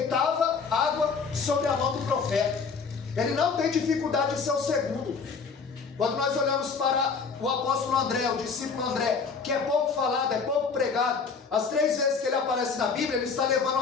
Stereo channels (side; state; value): right; quieter; 5.2 dB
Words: água sobre a mão do profeta. Ele não tem dificuldade de ser o segundo. Quando nós olhamos para o apóstolo André, o discípulo André, que é pouco falado, é pouco pregado, as 3 vezes que ele aparece na Bíblia, ele está levando